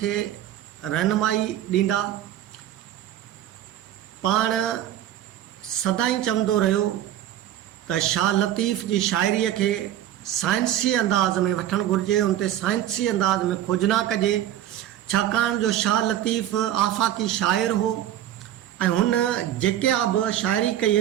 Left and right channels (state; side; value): quieter; left; 12.0 dB